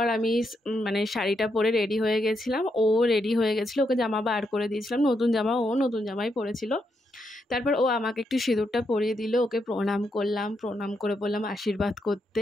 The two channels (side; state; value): both; normal; correlation 0.81